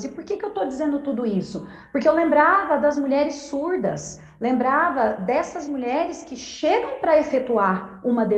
E por que eu estou dizendo tudo isso? Porque eu lembrava das mulheres surdas, lembrava dessas mulheres que chegam para efetuar uma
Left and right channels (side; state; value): both; identical; correlation 1.00